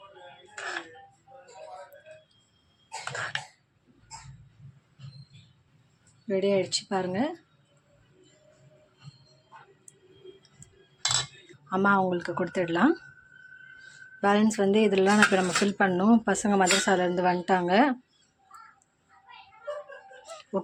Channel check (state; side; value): identical; both; correlation 1.00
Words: ரெடி ஆகிடுச்சு பாருங்கள். அம்மா அவங்களுக்கு கொடுத்துடலாம். பேலன்ஸ் வந்து இதெல்லாம் இப்போ நம்ம ஃபில் பண்ணணும். பசங்க மதரசாலேருந்து வந்துட்டாங்க.